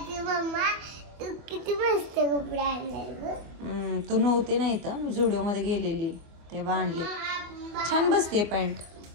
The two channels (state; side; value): late; left; 24 ms